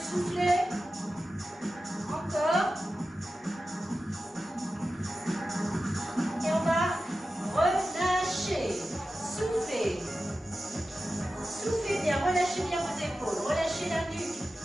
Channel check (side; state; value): both; normal; correlation 0.93